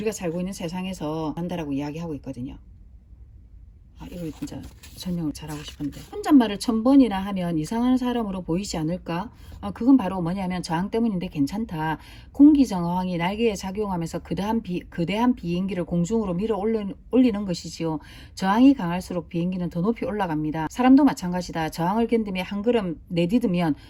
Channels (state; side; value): identical; both; correlation 1.00